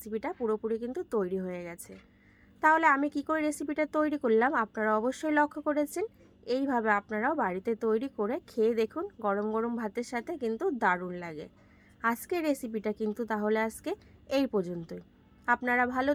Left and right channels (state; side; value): identical; both; correlation 1.00